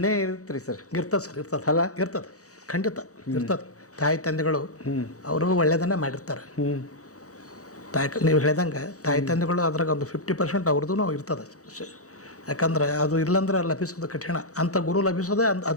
ಇರುತ್ತೆ ರೀ ಸರ್. ಇರ್ತದೆ ಸರ್, ಇರ್ತದೆ ಅಲ್ಲ, ಇರ್ತದೆ, ಖಂಡಿತ ಇರ್ತದೆ. ತಾಯಿ ತಂದೆಗಳು ಅವರು ಒಳ್ಳೆಯದನ್ನೇ ಮಾಡಿರ್ತಾರೆ. ನೀವು ಹೇಳ್ದಂಗೆ ತಾಯಿ ತಂದೆಗಳು ಅದ್ರಾಗ ಒಂದು 50% ಅವ್ರದ್ದು ಇರ್ತದೆ. ಯಾಕಂದ್ರೆ ಅದು ಇಲ್ಲಂದ್ರೆ ಲಭಿಸೋದು ಕಠಿಣ. ಅಂಥ ಗುರು ಲಭಿಸೋದೇ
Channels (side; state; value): right; late; 0.66 ms